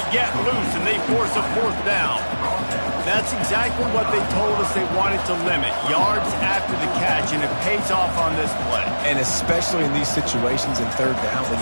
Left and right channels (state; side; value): inverted; both; correlation -1.00